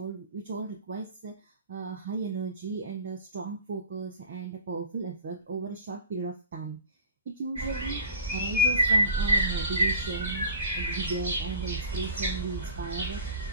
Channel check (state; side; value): inverted; both; correlation -0.40